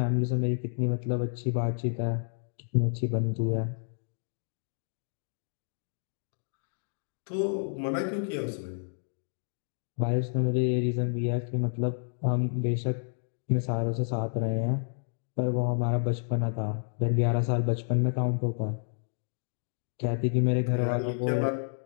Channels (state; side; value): silent; right; digital silence